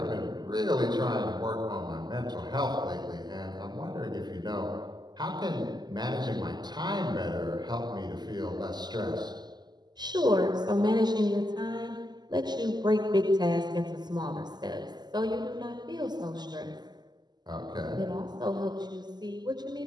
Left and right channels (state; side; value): late; left; 0.21 ms